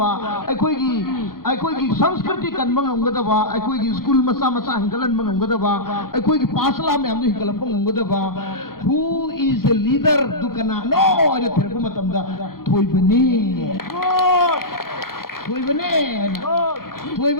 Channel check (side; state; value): right; late; 0.93 ms